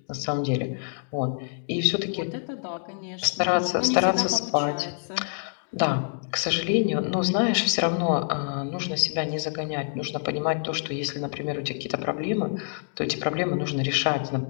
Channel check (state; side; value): silent; right; digital silence